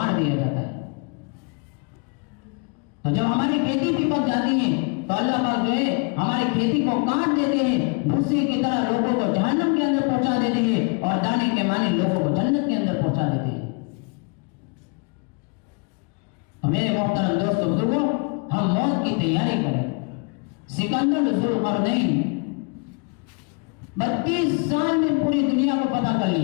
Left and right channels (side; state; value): right; quieter; 35.1 dB